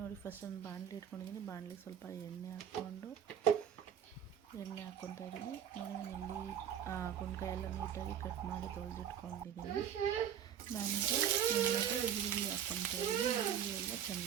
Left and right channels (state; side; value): quieter; left; 9.3 dB